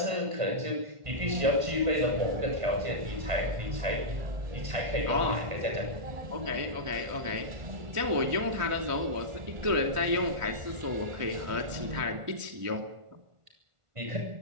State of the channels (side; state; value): left; late; 1.5 ms